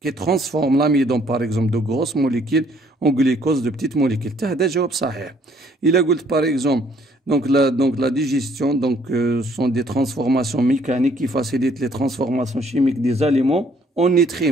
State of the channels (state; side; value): normal; both; correlation 0.63